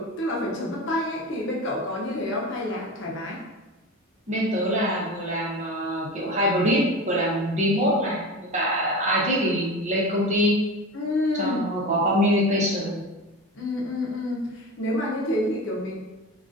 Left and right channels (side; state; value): both; normal; correlation 0.29